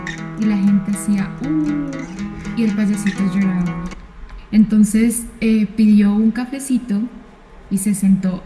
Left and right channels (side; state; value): both; identical; correlation 1.00